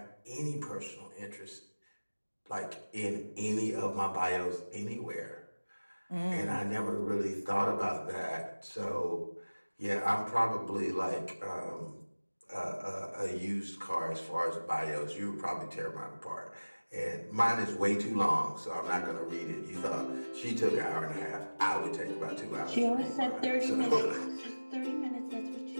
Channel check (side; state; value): both; inverted; correlation -1.00